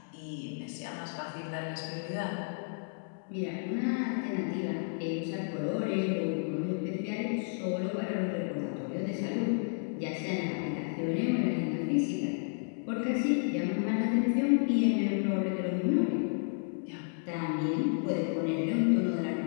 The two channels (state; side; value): silent; right; digital silence